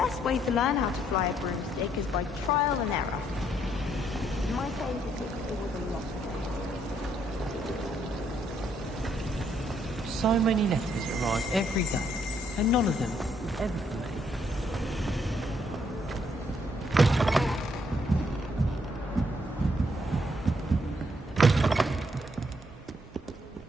way to learn how to fly a broomstick is by trial and error. In my case, it was a lot. So many letters arrive every day, and none of them is ever for me.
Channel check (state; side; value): normal; both; correlation 0.71